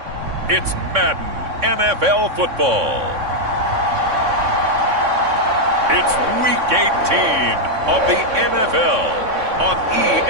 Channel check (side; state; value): left; late; 3.6 ms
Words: it's Madden NFL football. It's Week 18 of the NFL on